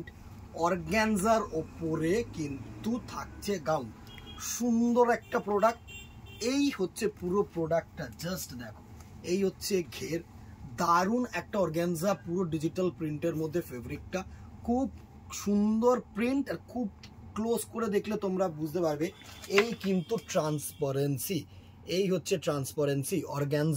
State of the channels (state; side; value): identical; both; correlation 1.00